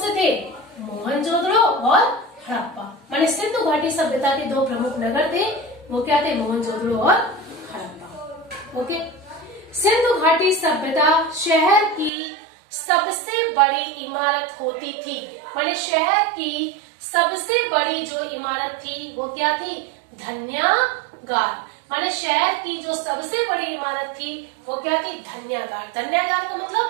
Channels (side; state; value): left; drops out; at 12.1 s